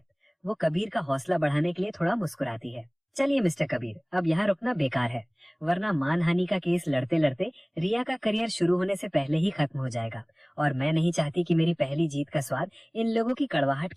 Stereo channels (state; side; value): identical; both; correlation 1.00